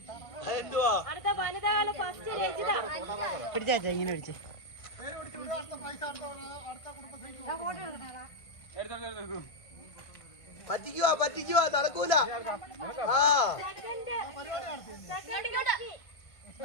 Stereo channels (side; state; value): right; late; 1.5 ms